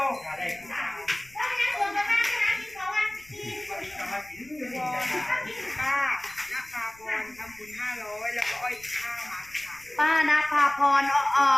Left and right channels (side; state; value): left; noise; rumble, 27 dB below the sound